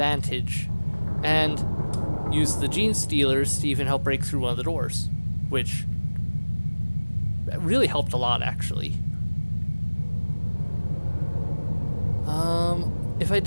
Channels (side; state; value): both; inverted; correlation -1.00